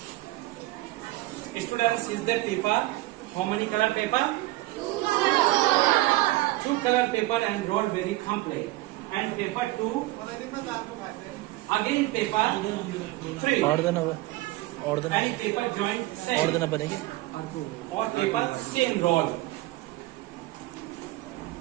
Students, is the paper? How many color paper? Two color paper and roll very complete. And paper 2. Again paper 3. And paper joint same. Or paper same roll.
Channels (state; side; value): quieter; left; 18.5 dB